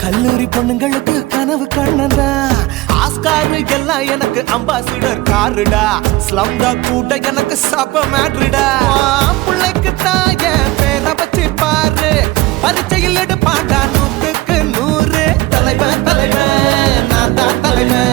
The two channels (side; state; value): left; quieter; 19.4 dB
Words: கல்லூரி பொண்ணுங்களுக்கு கனவு கண்ணனா Oscar எல்லாம் எனக்கு ambassador காருடா ஸ்லம்டா கூட எனக்கு சப்ப மேட்ருடா பிள்ளைக்கு தான் என் பேரை வச்சு பாரு பரிச்சையில் எடுப்பாண்டா 100க்கு 100 தலைவன் தலைவன் நான் தான்